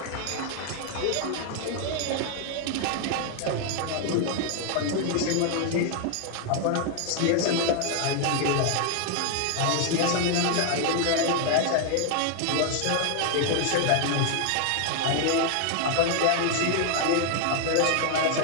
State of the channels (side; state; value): both; different; correlation 0.00